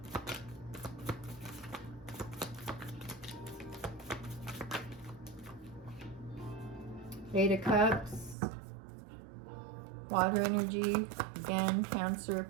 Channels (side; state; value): left; drops out; at 8.3 s